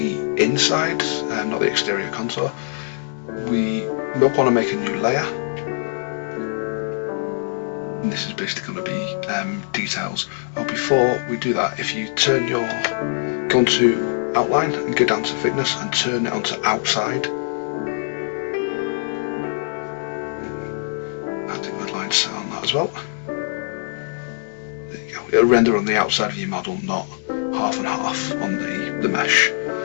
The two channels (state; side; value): silent; right; digital silence